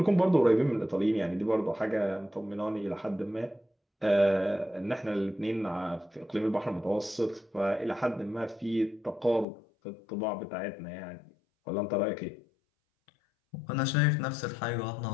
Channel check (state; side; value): drops out; right; at 9.5 s